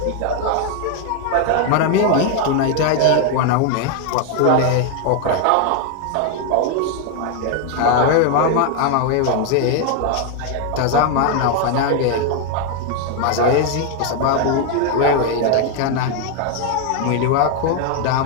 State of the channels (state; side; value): different; both; correlation 0.01